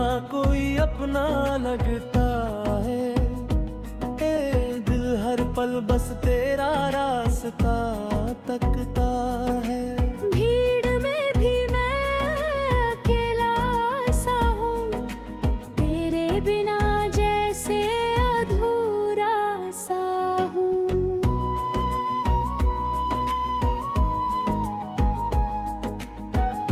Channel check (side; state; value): both; identical; correlation 1.00